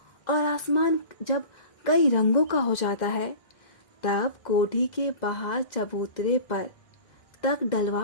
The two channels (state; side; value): late; right; 1.6 ms